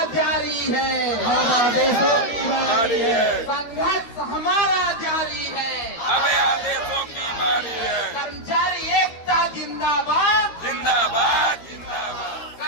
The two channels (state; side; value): late; right; 13 ms